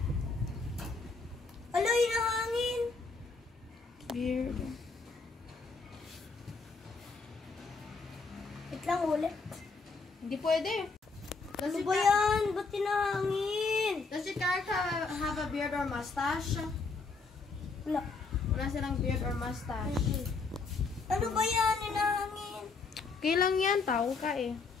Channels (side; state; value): right; quieter; 4.3 dB